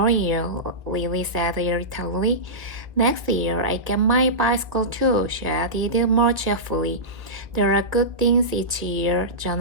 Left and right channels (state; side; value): late; left; 1.5 ms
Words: year, Lily said irritably. Next year, I get my bicycle too, she added more cheerfully. There are good things each year,